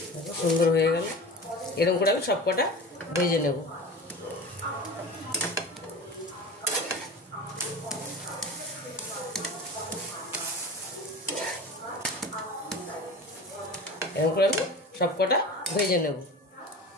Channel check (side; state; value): both; normal; correlation 0.34